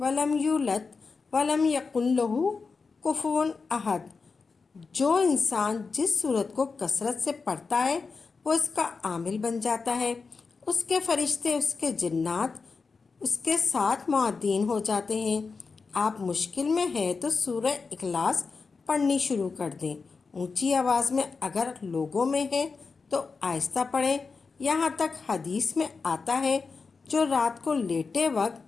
یولد ولم یکن لہ کفوا احد۔ جو انسان جس سورت کو کثرت سے پڑھتا ہے وہ اس کا عامل بن جاتا ہے، اس کے فرشتے، اس کے جنات اس کے ساتھ معدین ہو جاتے ہیں۔ آپ مشکل میں ہیں تو سورہ اخلاص پڑھنی شروع کر دیں۔ اونچی آواز میں اگر لوگوں میں ہے تو آہستہ پڑھیں۔ یہاں تک حدیث میں آتا ہے جو رات کو لیٹے وقت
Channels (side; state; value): right; quieter; 4.7 dB